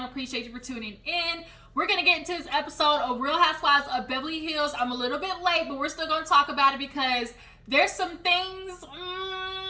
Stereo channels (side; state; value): both; identical; correlation 1.00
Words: Appreciate you for tuning in. We're going to get into this episode of Real Housewives of Beverly Hills. I'm a little bit late, but we're still going to talk about it because there's some things